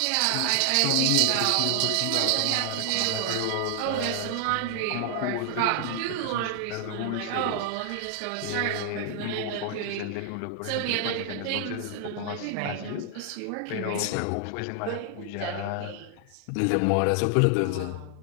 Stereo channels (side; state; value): both; different; correlation 0.00